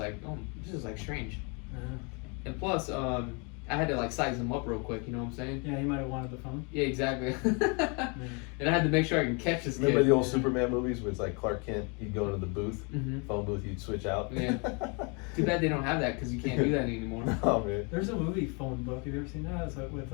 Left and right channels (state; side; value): quieter; right; 33.3 dB